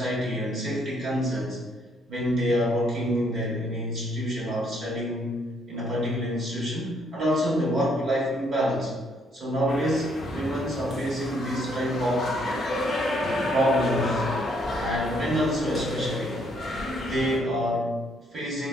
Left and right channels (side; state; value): both; normal; correlation 0.69